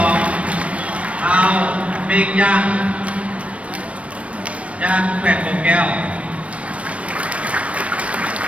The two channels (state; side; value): late; left; 0.063 ms